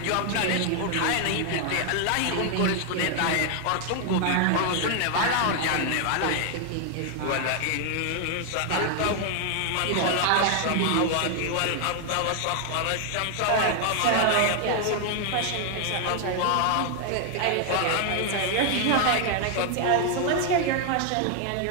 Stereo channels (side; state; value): both; different; correlation 0.00